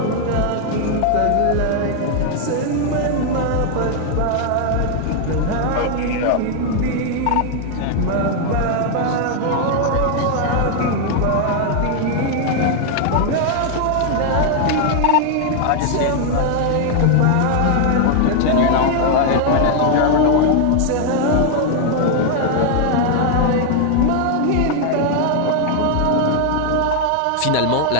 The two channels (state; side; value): different; both; correlation 0.00